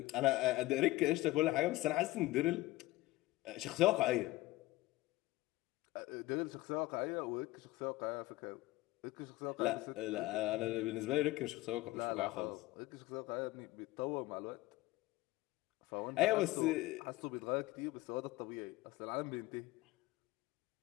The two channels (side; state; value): right; quieter; 18.6 dB